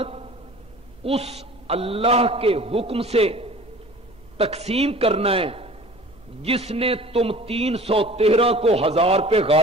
اس اللہ کے حکم سے تقسیم کرنا ہے جس نے تم 313 کو 1000 پہ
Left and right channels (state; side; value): noise; right; hum, 28 dB below the sound